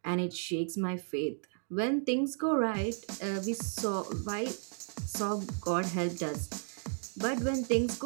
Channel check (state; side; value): silent; left; 55 dB below the other